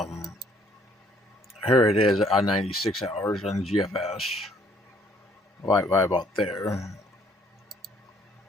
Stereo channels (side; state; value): both; normal; correlation 0.62